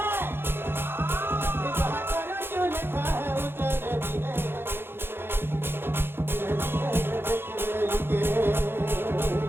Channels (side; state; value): left; late; 0.11 ms